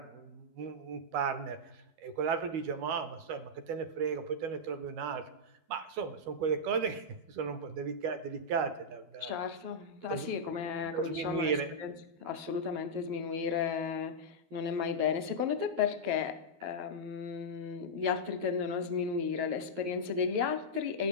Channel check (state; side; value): late; left; 11 ms